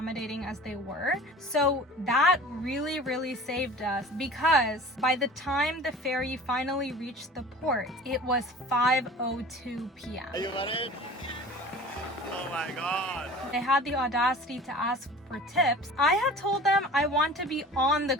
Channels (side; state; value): both; normal; correlation 0.42